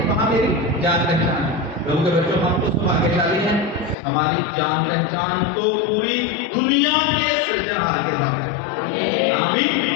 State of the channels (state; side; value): drops out; right; at 4.0 s